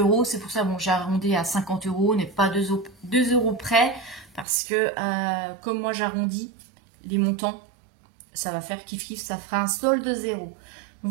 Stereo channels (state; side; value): drops out; left; at 4.5 s